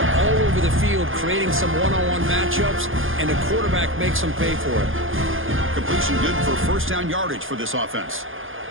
all over the field, creating some one-on-one matchups, and the quarterback makes them pay for it. Completion good for first down yardage for this offense.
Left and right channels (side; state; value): left; late; 0.59 ms